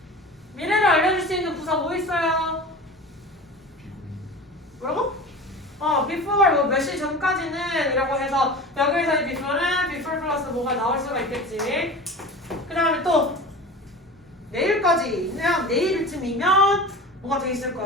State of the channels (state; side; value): normal; both; correlation 0.34